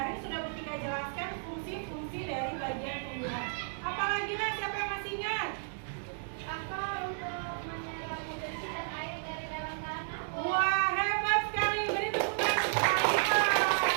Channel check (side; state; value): left; silent; digital silence